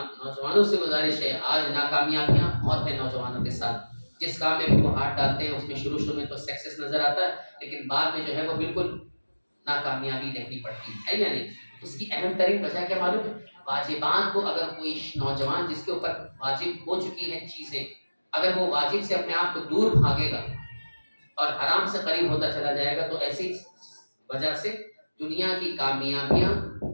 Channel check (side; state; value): both; inverted; correlation -1.00